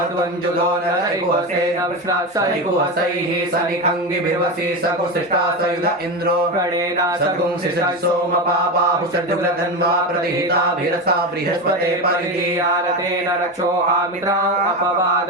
नरैकुहसेन सैकुहसैः सनिखङ्गिभिर्वसि सकुशिष्टा सयुध इन्द्रो प्रणेन सगुंसिषः सोमपापाहु सद्युग्रधन्वा प्रतिहिताभिरसा बृहस्पते परिधीयारतेन रक्षोहामित्रा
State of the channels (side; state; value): both; normal; correlation 0.19